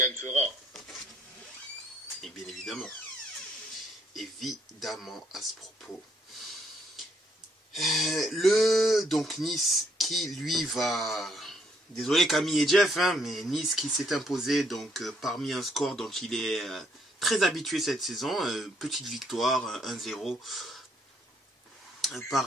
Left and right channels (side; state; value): both; normal; correlation 0.70